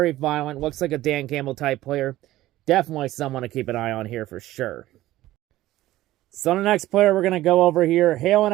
violent. Looks like a Dan Campbell type player. Definitely someone to keep an eye on here for sure. So the next player we're going to go over here, hailing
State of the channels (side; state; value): left; quieter; 15.6 dB